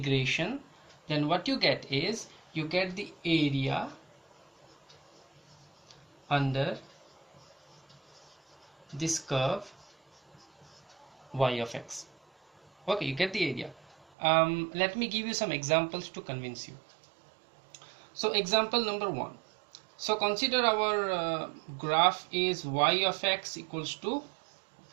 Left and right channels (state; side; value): drops out; left; at 14.1 s